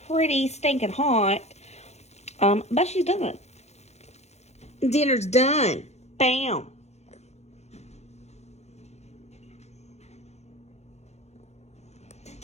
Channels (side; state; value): right; late; 0.32 ms